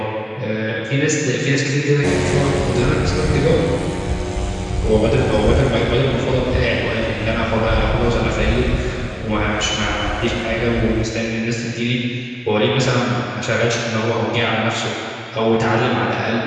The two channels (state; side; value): identical; both; correlation 1.00